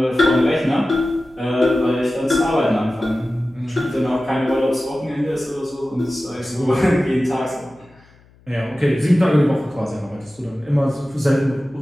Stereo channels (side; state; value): left; noise; hum, 29 dB below the sound